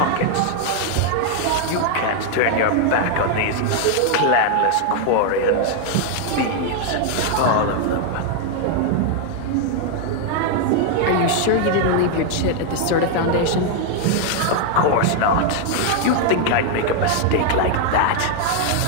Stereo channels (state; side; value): different; both; correlation 0.00